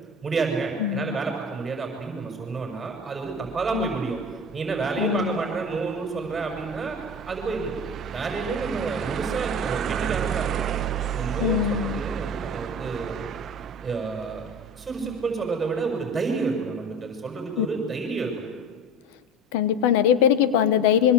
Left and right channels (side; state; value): both; normal; correlation 0.30